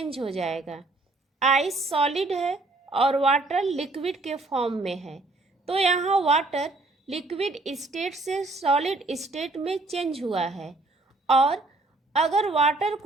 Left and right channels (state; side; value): quieter; left; 3.2 dB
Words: हो जाएगा। आइस सॉलिड है और वाटर लिक्विड के फॉर्म में है, तो यहाँ वाटर लिक्विड स्टेट से सॉलिड स्टेट में चेंज हुआ है। और अगर वाटर